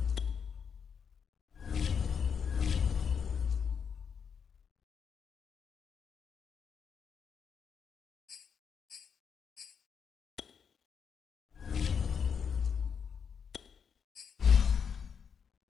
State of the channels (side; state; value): right; quieter; 6.8 dB